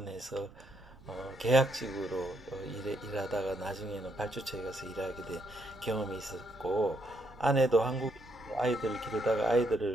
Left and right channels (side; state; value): right; noise; rumble, 22 dB below the sound